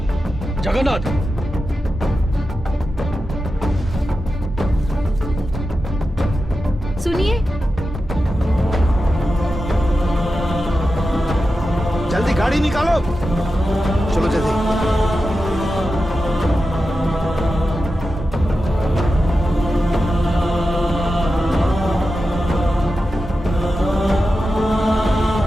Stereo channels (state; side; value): normal; both; correlation 0.91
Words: जगन्नाथ, सुनिए, जल्दी गाड़ी निकालो, चलो जल्दी।